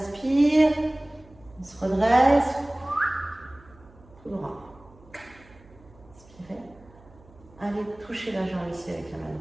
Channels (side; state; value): right; noise; hum, 25 dB below the sound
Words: on se redresse, tout droit. Inspirez. Allez toucher la jambe ici avec la main